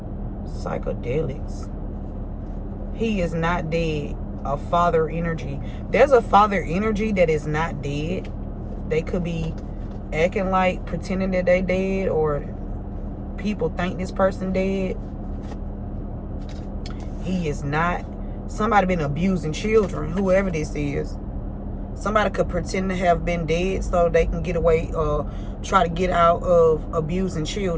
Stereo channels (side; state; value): both; identical; correlation 1.00